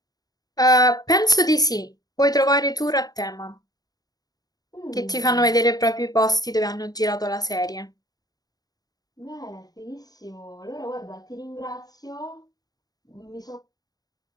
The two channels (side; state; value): right; late; 0.18 ms